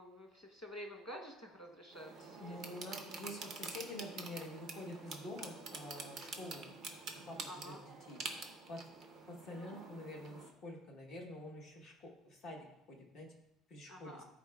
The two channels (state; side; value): normal; both; correlation 0.51